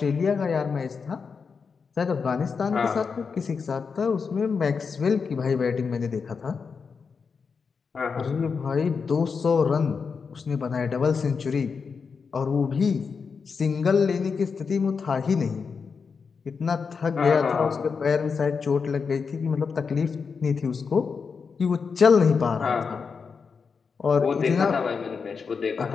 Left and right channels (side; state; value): right; quieter; 5.5 dB